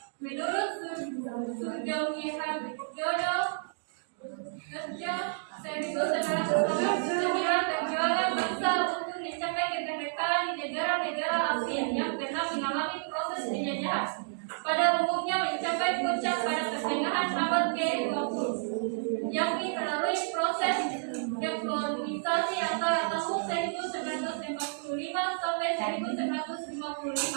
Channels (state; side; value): silent; left; digital silence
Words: Menurut Surjo Jodo 1989, perjuangan bangsa untuk mencapai kemerdekaan di negara-negara Asia yang pernah mengalami proses penjajahan pada umumnya mencapai puncak pada pertengahan abad ke-20, yakni melalui proses dekolonisasi antara tahun 1945 sampai